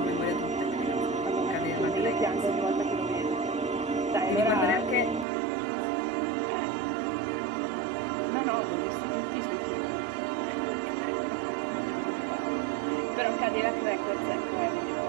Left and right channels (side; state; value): left; drops out; at 5.2 s